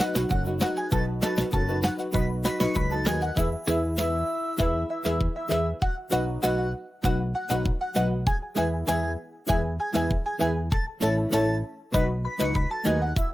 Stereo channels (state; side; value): normal; both; correlation 0.95